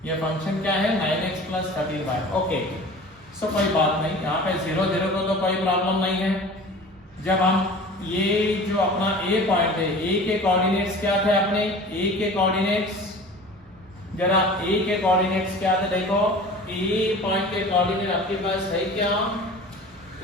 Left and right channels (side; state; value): both; normal; correlation 0.40